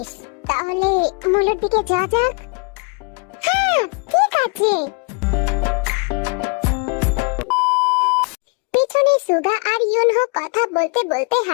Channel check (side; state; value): right; quieter; 33.5 dB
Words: তাহলে মুলোর দিকে যাওয়া যাক। হ্যাঁ ঠিক আছে। পেছনে সুগা আর ইউনহো কথা বলতে বলতে